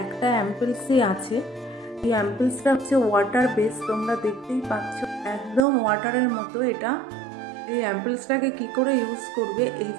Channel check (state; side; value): drops out; left; at 5.6 s